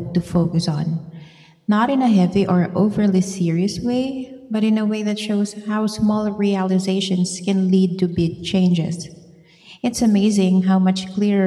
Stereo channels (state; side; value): identical; both; correlation 1.00